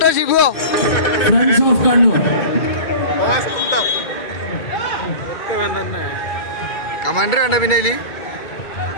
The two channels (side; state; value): right; late; 2.2 ms